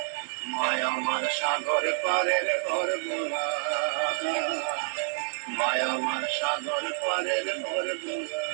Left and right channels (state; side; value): silent; left; 58 dB below the other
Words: মায় আমার সাগর পারের ঘর বোলা মায় আমার সাগর পারের ঘর বোলা